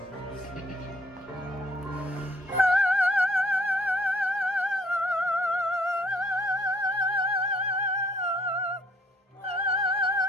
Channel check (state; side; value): normal; both; correlation 0.63